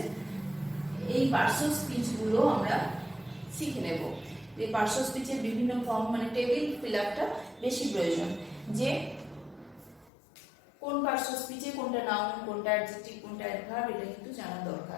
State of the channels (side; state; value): right; drops out; at 10.1 s